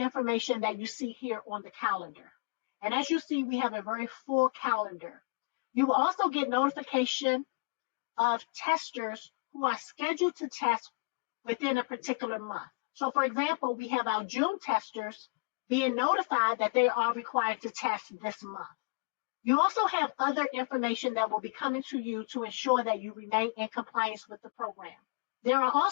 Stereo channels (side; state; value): right; quieter; 31.0 dB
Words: that you see here on the calendar. And as you see, we have a very full calendar. You will also get notification of testers who are scheduled to test within a particular month. So for example, we have our June testers being notified that they are required to test this month. You also have other information that will be coming to you to ensure that you remain in compliance with the program. There are